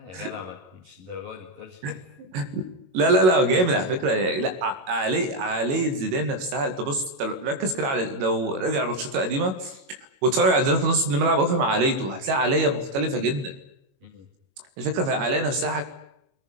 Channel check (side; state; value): left; late; 22 ms